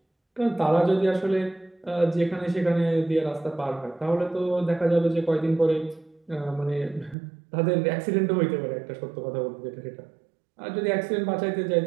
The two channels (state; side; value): drops out; left; at 7.2 s